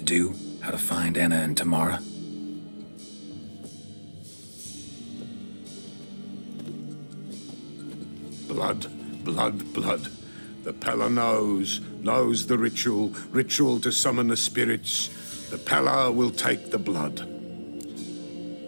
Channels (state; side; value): inverted; both; correlation -1.00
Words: do? How to find Anna and Tamara? Blood, blood, blood. The Pella knows the ritual to summon the spirits. The Pella will take the blood.